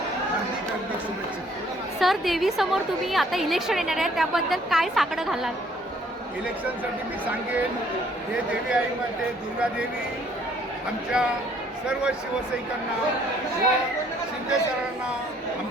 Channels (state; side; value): normal; both; correlation 0.62